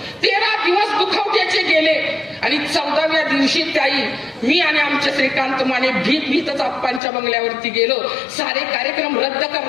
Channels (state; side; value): drops out; right; at 7.0 s